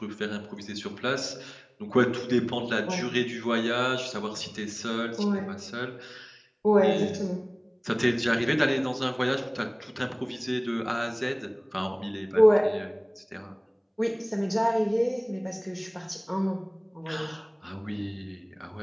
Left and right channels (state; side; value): identical; both; correlation 1.00